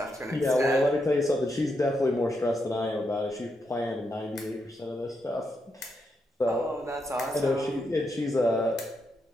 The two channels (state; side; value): normal; both; correlation 0.82